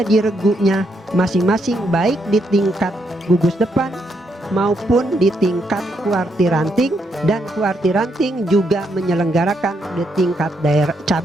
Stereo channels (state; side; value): normal; both; correlation 0.77